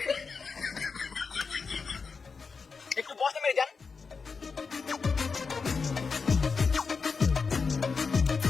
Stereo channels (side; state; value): right; quieter; 5.0 dB